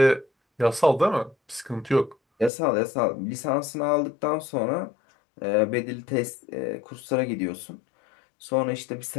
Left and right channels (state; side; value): drops out; right; at 2.5 s